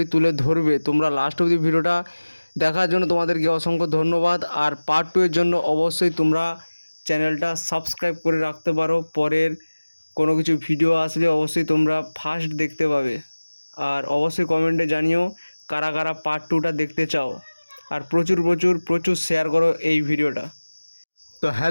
তুলে ধরবে। তোমরা লাস্ট অবধি ভিডিওটা দেখার জন্য তোমাদেরকে অসংখ্য ধন্যবাদ। আর পার্ট 2 এর জন্য অবশ্যই তোমরা চ্যানেলটা সাবস্ক্রাইব করে রাখতে পারো। পরের কোনো কিছু ভিডিও আসলে অবশ্যই তোমরা ফার্স্ট দেখতে পাবে। আর অবশ্যই কমেন্টে জানিও কারা কারা পার্ট 2টা দেখতে চাও। আর প্রচুর প্রচুর প্রচুর শেয়ার করো এই ভিডিওটা। তো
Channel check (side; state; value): both; inverted; correlation -1.00